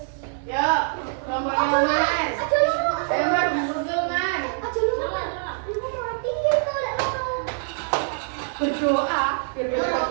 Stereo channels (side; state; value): left; silent; 62 dB below the other